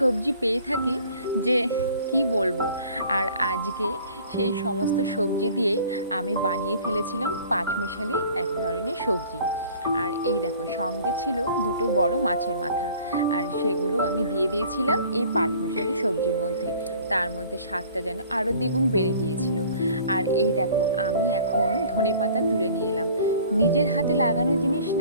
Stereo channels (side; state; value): both; inverted; correlation -0.50